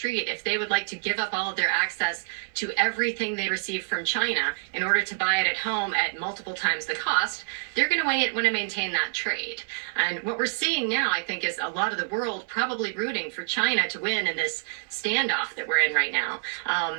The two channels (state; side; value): silent; left; digital silence